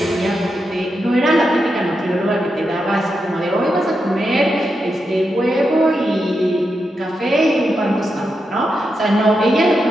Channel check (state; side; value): normal; both; correlation 0.86